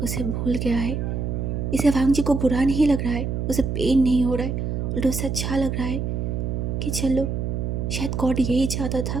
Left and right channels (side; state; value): right; noise; hum, 2 dB below the sound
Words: उसे भूल गया है। इसे वांग जी को बुरा नहीं लग रहा है, उसे पेन नहीं हो रहा है, उल्टा उसे अच्छा लग रहा है कि चलो शायद गॉड यही चाहता